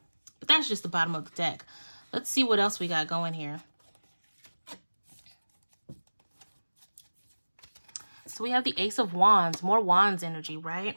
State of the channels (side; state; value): both; inverted; correlation -1.00